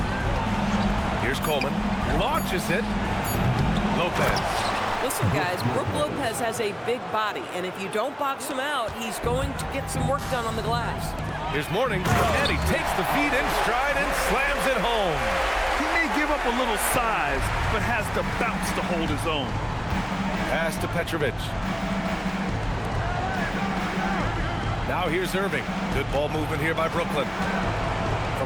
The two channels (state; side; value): identical; both; correlation 1.00